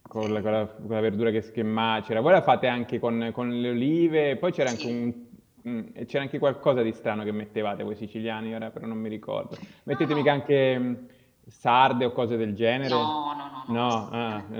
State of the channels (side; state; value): both; identical; correlation 1.00